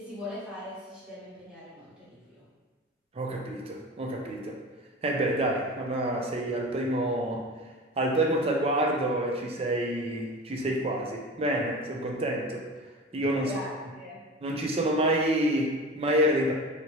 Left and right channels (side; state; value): both; normal; correlation 0.33